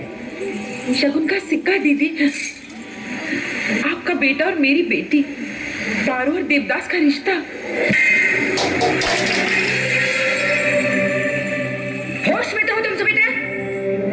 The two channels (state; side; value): identical; both; correlation 1.00